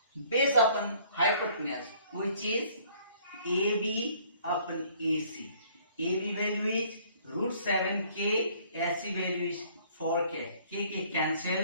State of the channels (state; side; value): inverted; both; correlation -0.59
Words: based upon hypotenuse, which is AB upon AC. AB value is root 7k, AC value is 4k. K